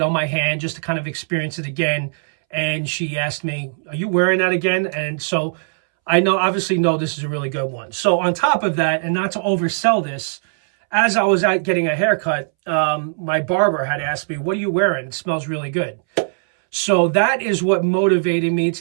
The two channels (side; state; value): left; silent; 65 dB below the other